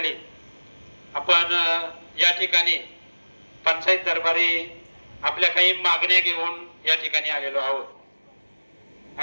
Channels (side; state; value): both; inverted; correlation -1.00